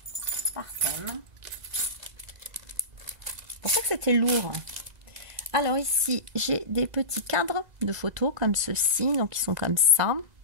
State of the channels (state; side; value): late; left; 2.0 ms